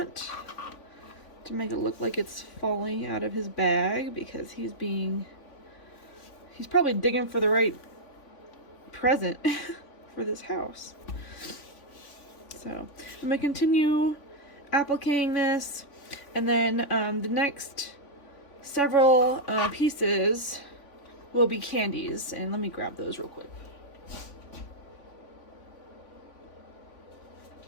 to make it look like it's falling out of his bag, because he's probably digging for the right present for this house. So I'm gonna continue appliquing this, and then the next several pieces will be candies, and let me grab those real quick.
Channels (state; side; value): late; right; 3.5 ms